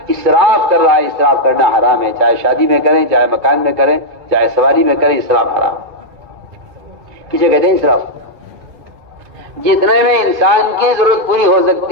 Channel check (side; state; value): left; late; 2.3 ms